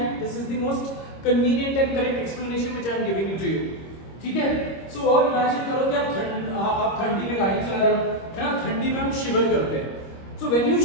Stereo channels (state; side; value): late; right; 26 ms